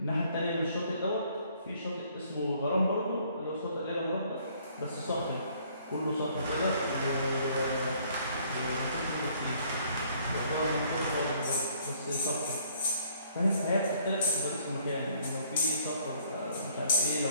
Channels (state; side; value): inverted; both; correlation -0.62